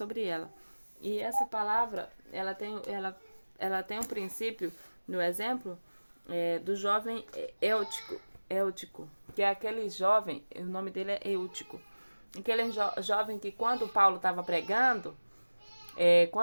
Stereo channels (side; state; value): both; inverted; correlation -1.00